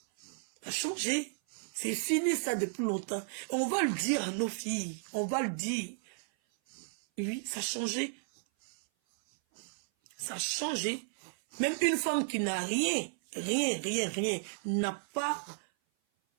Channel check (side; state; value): left; silent; 55 dB below the other